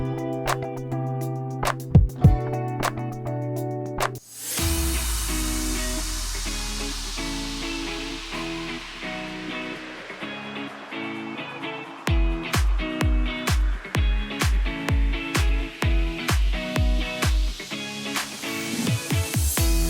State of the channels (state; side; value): identical; both; correlation 1.00